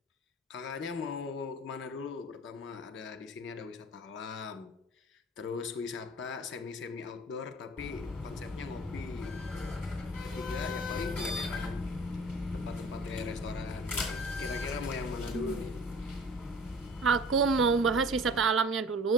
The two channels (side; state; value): both; normal; correlation 0.45